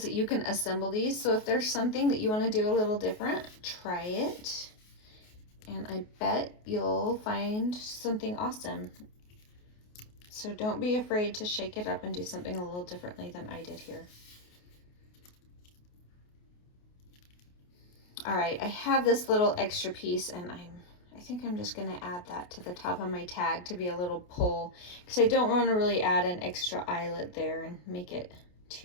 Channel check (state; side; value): late; right; 28 ms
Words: that you can assemble these. So if there's something that you want to do a little different, try it. And I bet you'll find something awesome. So don't be afraid to shake it up and do something a little differently than I did here. All right, I have this little extra piece, and I think I'm just gonna add that to the top of my tag to be a little pull, because I don't want to really add an extra eyelet there and make it